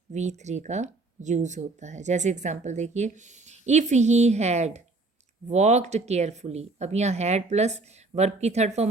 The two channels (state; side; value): quieter; left; 3.3 dB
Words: V3 का यूज़ होता है। जैसे एग्जांपल देखिए, if he had walked carefully, अब यहाँ हैड प्लस वर्ब की थर्ड